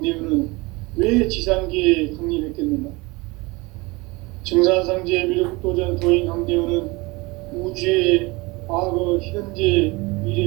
왜 지상계에 강림했겠는가? 증산상제 미륵도전 도인 강대훈은 우주의 과거, 현재,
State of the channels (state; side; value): quieter; left; 24.2 dB